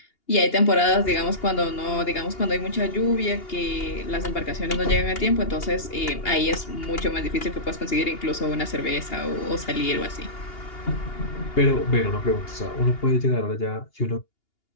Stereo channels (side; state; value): right; late; 2.8 ms